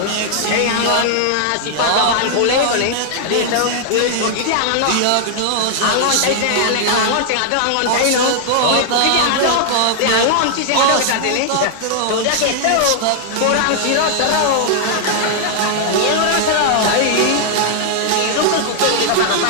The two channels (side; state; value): both; different; correlation 0.00